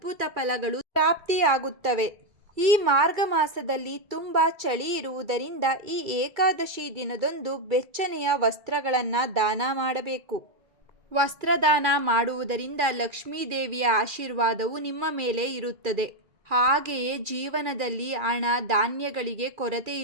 ಫಲಗಳು ಪ್ರಾಪ್ತಿಯಾಗುತ್ತವೆ. ಈ ಮಾರ್ಗ ಮಾಸದಲ್ಲಿ ತುಂಬ ಚಳಿ ಇರುವುದರಿಂದ ಈ ಏಕಾದಶಿ ದಿನದಂದು ಬೆಚ್ಚನೆಯ ವಸ್ತ್ರಗಳನ್ನು ದಾನ ಮಾಡಬೇಕು. ವಸ್ತ್ರದಾನ ಮಾಡುವುದರಿಂದ ಲಕ್ಷ್ಮೀ ದೇವಿಯ ಆಶೀರ್ವಾದವು ನಿಮ್ಮ ಮೇಲೆ ಇರುತ್ತದೆ. ಹಾಗೆಯೇ ಜೀವನದಲ್ಲಿ ಹಣ ಧಾನ್ಯಗಳಿಗೆ ಕೊರತೆ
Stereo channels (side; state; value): left; late; 2.3 ms